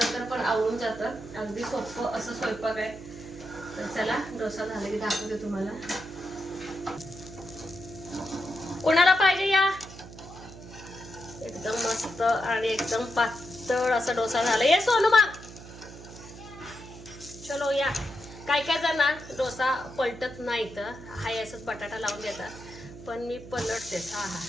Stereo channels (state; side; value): noise; right; hum, 15 dB below the sound